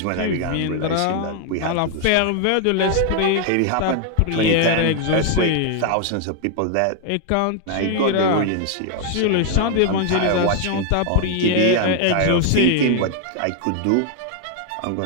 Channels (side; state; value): both; different; correlation 0.00